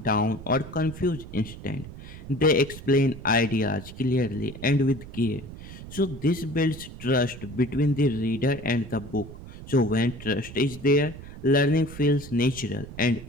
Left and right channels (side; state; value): right; noise; rumble, 14 dB below the sound